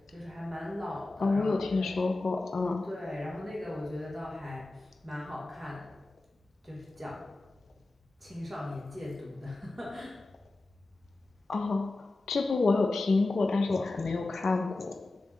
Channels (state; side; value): quieter; right; 3.0 dB